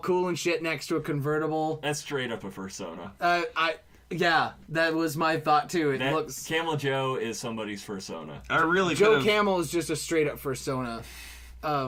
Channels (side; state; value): both; identical; correlation 1.00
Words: and shit next to a convertible. That's straight up a persona. Yeah, that was my thought, too. It That looks... Camel Joe is somebody's persona. I really Joe could've- Camel is just a straight-up persona